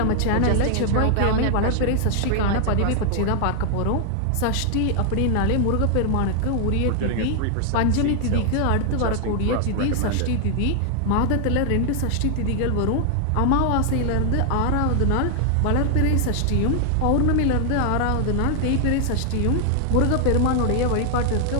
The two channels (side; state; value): both; different; correlation 0.00